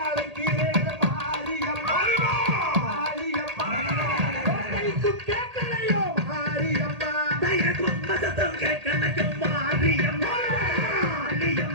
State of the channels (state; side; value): late; left; 1.8 ms